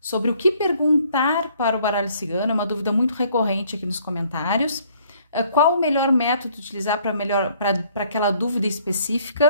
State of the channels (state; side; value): inverted; both; correlation -0.62